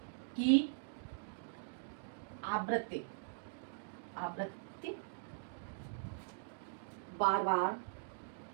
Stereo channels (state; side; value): silent; left; digital silence